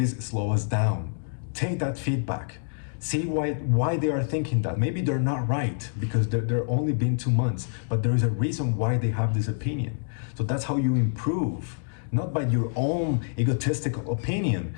slow us down? Take that feedback. See why they are thinking that. Maybe they're not right because they're only been 2 months, but there is a reason why they have this opinion. So that's how you improve. Not by your own egotistical opinion.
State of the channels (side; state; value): right; silent; digital silence